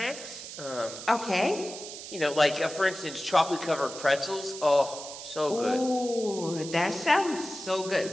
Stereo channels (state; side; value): noise; right; hiss, 11 dB below the sound